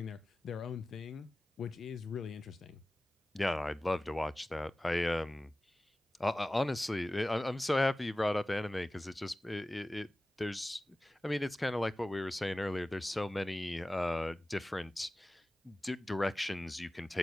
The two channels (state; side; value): normal; both; correlation 0.97